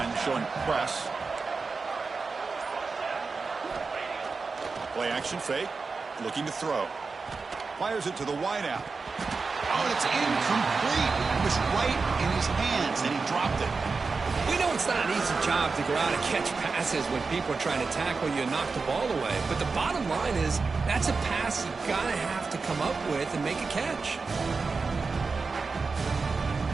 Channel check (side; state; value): left; quieter; 4.4 dB